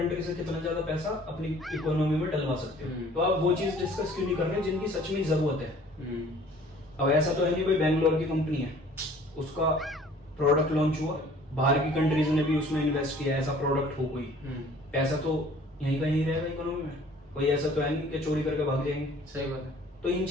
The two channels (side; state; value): both; normal; correlation 0.52